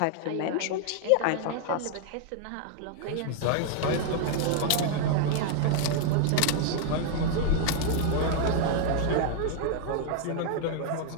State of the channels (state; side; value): different; both; correlation 0.00